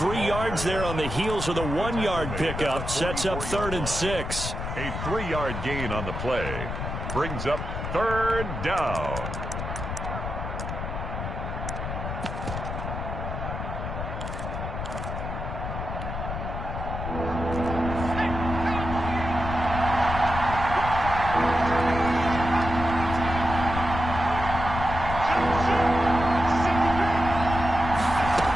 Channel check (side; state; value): left; noise; rumble, 5 dB below the sound